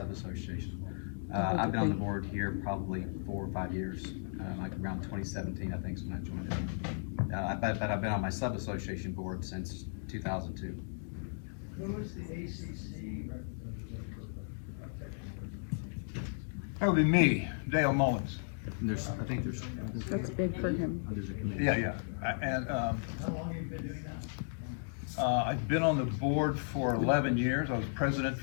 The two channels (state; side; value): silent; right; digital silence